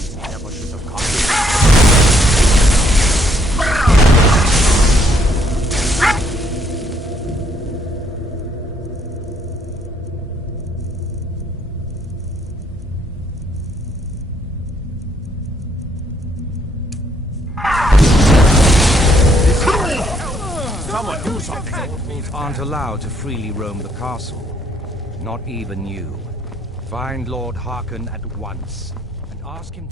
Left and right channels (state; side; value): normal; both; correlation 0.69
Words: Never should have come. Mortals aren't allowed to freely roam the castle. Not even you. Find Lord Harkon at once, and ask him